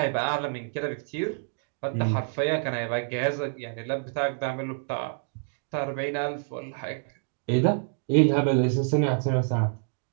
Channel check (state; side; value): silent; left; 60 dB below the other